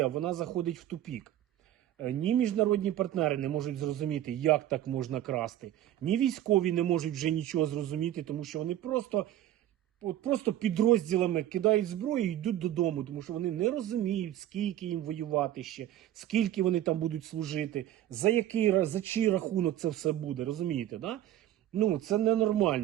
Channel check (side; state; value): left; quieter; 12.6 dB